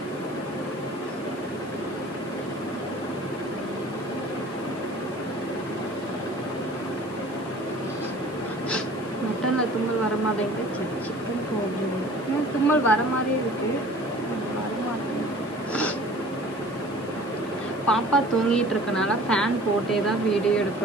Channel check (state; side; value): noise; right; hiss, 26 dB below the sound